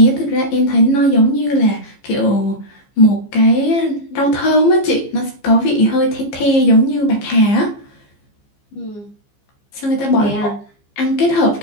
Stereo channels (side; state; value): right; late; 15 ms